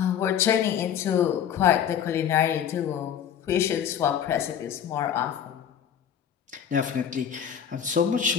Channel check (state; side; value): quieter; right; 8.9 dB